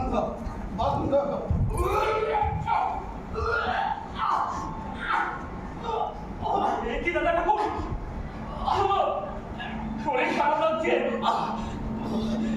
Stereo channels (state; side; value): identical; both; correlation 1.00